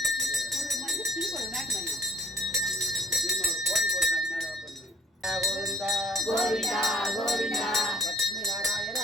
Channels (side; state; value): both; normal; correlation 0.60